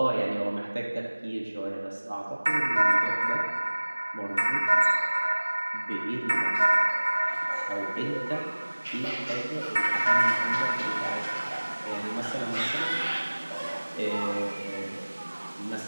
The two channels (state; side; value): inverted; both; correlation -1.00